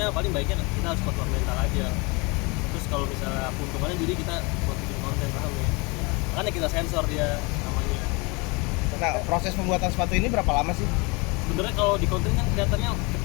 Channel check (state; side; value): quieter; right; 27.9 dB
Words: paling baiknya kita harus kuat mental aja. Terus kalau misalnya keuntungannya jadi kita buat bikin konten paham ya, makanya kita sensor dia namanya. Nah, proses pembuatan sepatu ini berapa lama sih? Sebenarnya kalau di konten kan kelihatannya